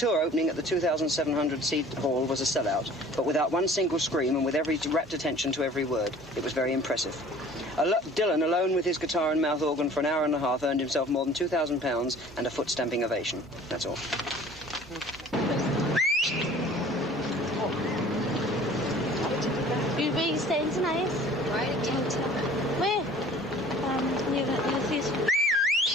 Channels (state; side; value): normal; both; correlation 0.48